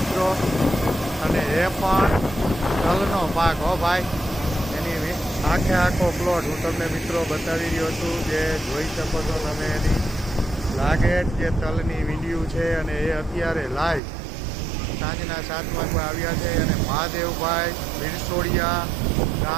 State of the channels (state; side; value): drops out; left; at 14.0 s